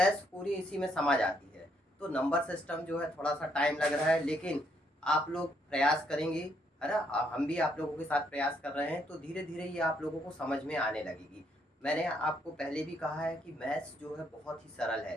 पूरी इसी में समझ आती है। तो नंबर सिस्टम जो है थोड़ा सा टाइम लग रहा है, लेकिन आप लोग प्रयास करेंगे, है ना। हम भी आप लोगों के साथ प्रयास कर रहे हैं, तो धीरे धीरे ये आप लोगों को समझ में आने लगेगी। मैंने आपको पहले भी कहा है कि मैथ्स जो है बहुत ही सरल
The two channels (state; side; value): normal; both; correlation 0.72